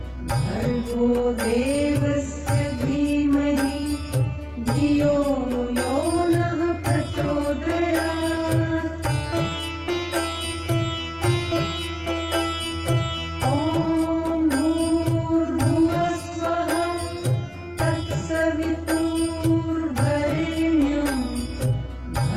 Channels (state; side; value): identical; both; correlation 1.00